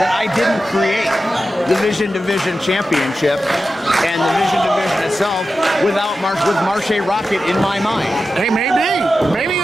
I didn't create the Vision Division Championship and the Vision Division itself with Marche Rocket in my mind? Hey, maybe. Maybe you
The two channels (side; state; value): both; normal; correlation 0.92